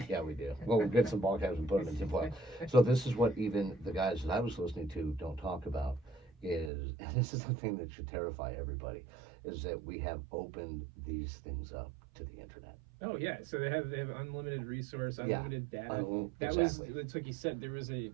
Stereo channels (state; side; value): drops out; left; at 6.7 s